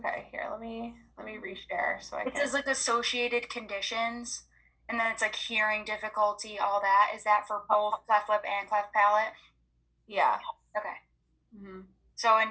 Here, let me reshare so I It can. says like associated conditions, and then it's like hearing difficulty, all that. Is that for both cleft lip and cleft palate? Yeah. Okay. Mm-hmm. So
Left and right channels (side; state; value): both; identical; correlation 1.00